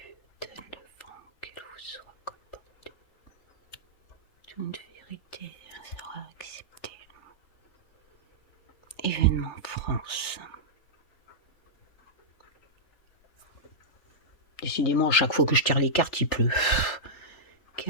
Donne le vent qu'elle vous soit comportée. Toute vérité sera acceptée. Événement France. Décidément, à chaque fois que je tire les cartes, il pleut.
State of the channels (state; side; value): late; right; 3.4 ms